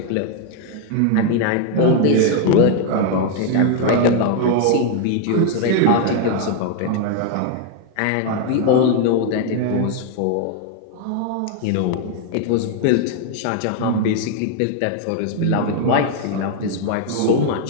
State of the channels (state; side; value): different; both; correlation 0.00